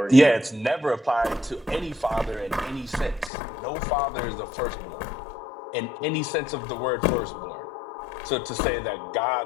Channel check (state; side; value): drops out; right; at 3.3 s